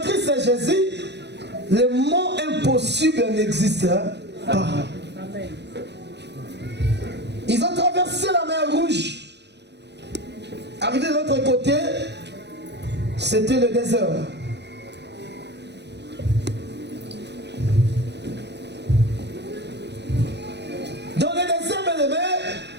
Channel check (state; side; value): late; left; 0.50 ms